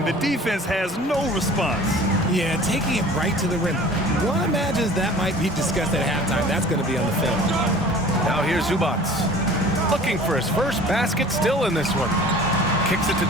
the defense has no response. Yeah, taking it right to the rim. One imagines that might be discussed at halftime. That's going to be on the film. Now here's Zubac. Looking for his first basket, still in this one. Kicks it to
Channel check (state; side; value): normal; both; correlation 0.46